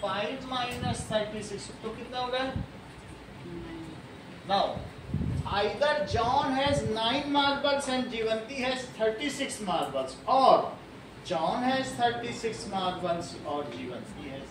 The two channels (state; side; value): identical; both; correlation 1.00